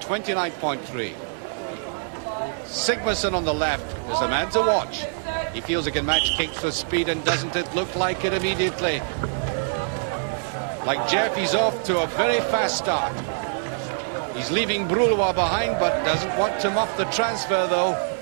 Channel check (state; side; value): silent; left; digital silence